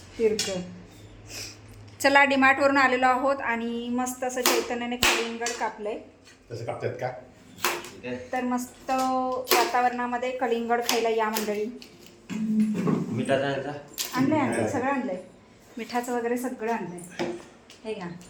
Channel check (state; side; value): identical; both; correlation 1.00